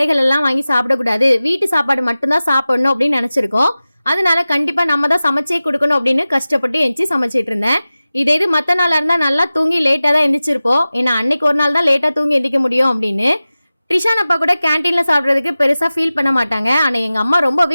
எல்லாம் வாங்கி சாப்பிடக்கூடாது, வீட்டு சாப்பாடு மட்டும்தான் சாப்பிடணும் அப்படின்னு நினச்சிருக்கோம். அதனால கண்டிப்பாக நம்ம தான் சமைச்சே கொடுக்கணும் அப்படின்னு கஷ்டப்பட்டு எழுந்துச்சி சமைச்சிட்டு இருந்தேன். இது மற்ற நாளாக இருந்தால் நல்லா தூங்கி லேட்டாக தான் எந்திரிச்சிருப்போம். ஏன்னா அன்னைக்கு ஒரு நாள் தான் லேட்டாக தூங்கி எந்திரிக்க முடியும் அப்படின்னு. ட்ரிஷான் அப்பா கூட கேன்டீனில் சாப்பிட்றதுக்கு பெருசாக ஃபீல் பண்ண மாட்டாங்க. ஆனால் எங்கள் அம்மா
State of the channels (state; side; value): inverted; both; correlation -0.96